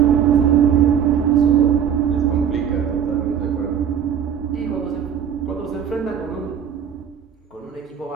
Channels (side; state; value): left; quieter; 8.4 dB